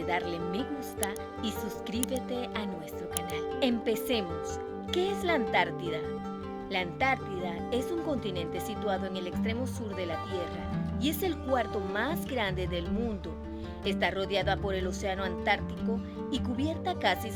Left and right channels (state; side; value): identical; both; correlation 1.00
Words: darle me gusta y suscríbete a nuestro canal. Empecemos. ¿Qué es la Antártida? La Antártida es un continente situado en el extremo sur de la Tierra y es el cuarto más grande del mundo. Está rodeada por el océano Antártico y cubierta casi